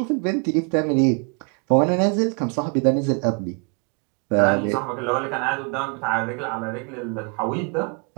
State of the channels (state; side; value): quieter; left; 36.3 dB